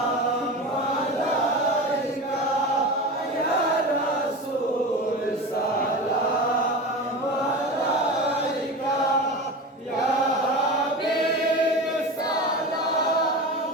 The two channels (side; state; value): both; normal; correlation 0.28